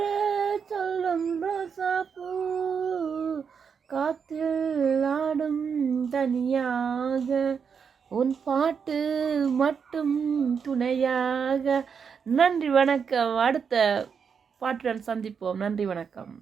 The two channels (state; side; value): quieter; left; 6.5 dB